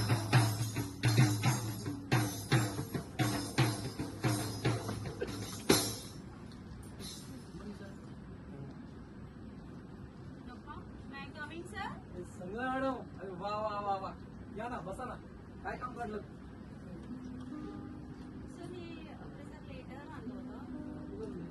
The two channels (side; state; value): both; identical; correlation 1.00